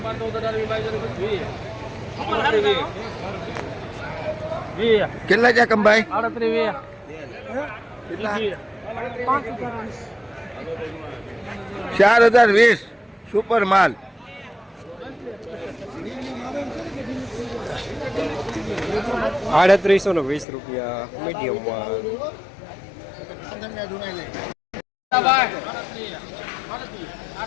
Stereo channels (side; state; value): right; drops out; at 20.5 s